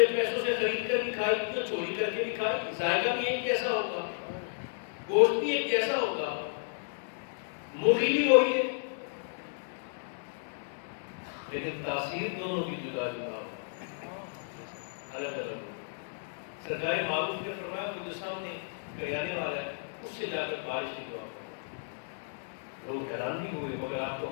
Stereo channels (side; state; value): right; silent; digital silence